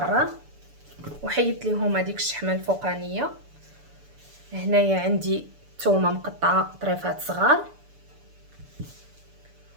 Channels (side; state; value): left; late; 6.9 ms